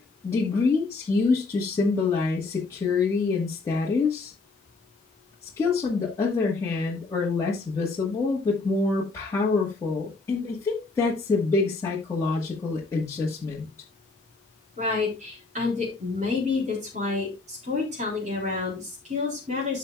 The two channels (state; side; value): quieter; right; 3.7 dB